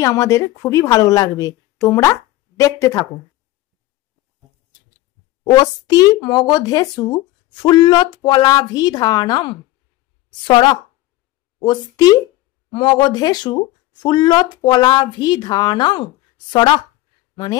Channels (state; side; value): quieter; right; 16.6 dB